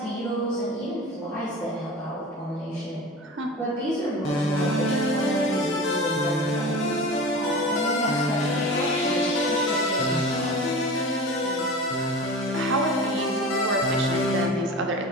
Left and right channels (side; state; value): both; normal; correlation 0.34